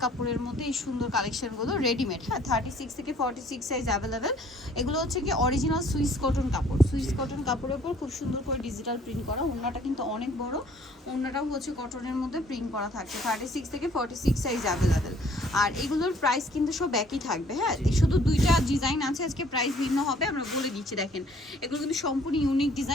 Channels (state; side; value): normal; both; correlation 0.58